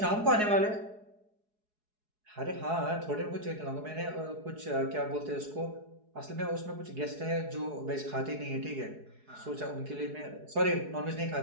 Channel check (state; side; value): late; left; 4.7 ms